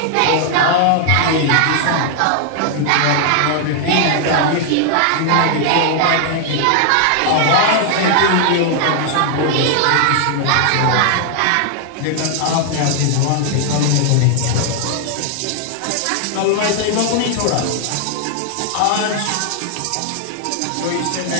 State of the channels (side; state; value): both; different; correlation 0.00